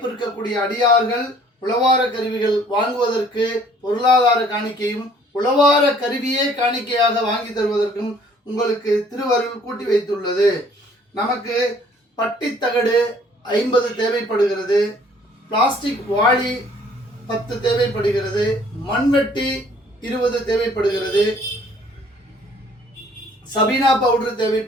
இருக்கக்கூடிய அடியார்கள் உழவார கருவிகள் வாங்குவதற்கு பொருளாதார காணிக்கையும் உழவார கருவியே காணிக்கையாக வாங்கி தருவதற்கும் உங்களுக்கு திருவருள் கூட்டி வைத்துள்ளது. நமக்கு பட்டித்தகடு 50 தேவைப்படுகிறது, பிளாஸ்டிக் வாளி 10 தேவைப்படுகிறது, மண்வெட்டி 20 தேவைப்படுகிறது, சபீனா பவுடர்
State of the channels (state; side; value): normal; both; correlation 0.58